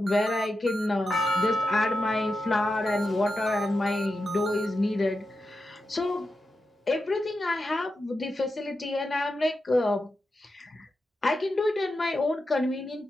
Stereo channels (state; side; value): normal; both; correlation 0.89